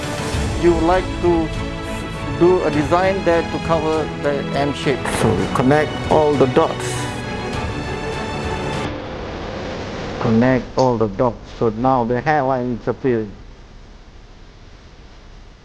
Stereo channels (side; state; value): both; identical; correlation 1.00